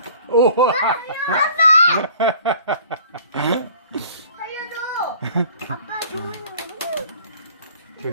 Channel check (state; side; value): inverted; both; correlation -0.51